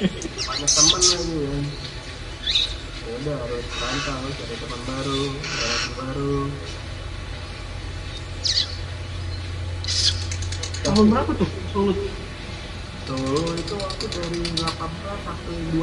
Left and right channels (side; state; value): both; identical; correlation 1.00